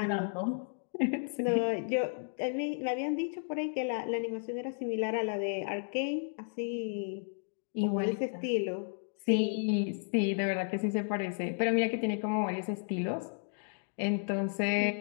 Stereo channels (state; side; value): silent; right; digital silence